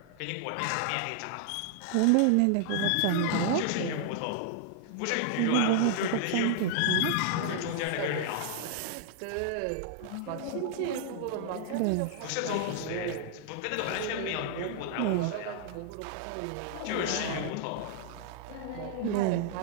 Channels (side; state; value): both; different; correlation -0.01